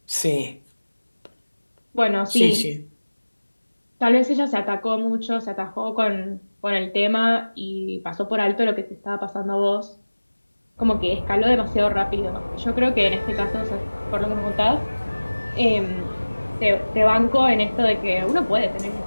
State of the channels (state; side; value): inverted; both; correlation -1.00